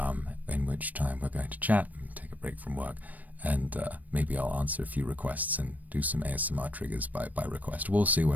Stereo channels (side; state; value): left; late; 0.078 ms